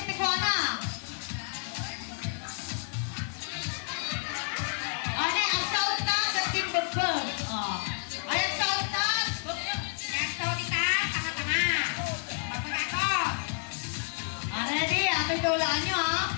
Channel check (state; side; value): silent; right; 58 dB below the other